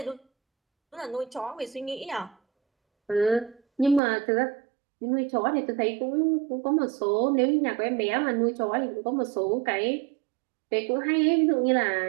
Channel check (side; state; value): left; drops out; at 4.0 s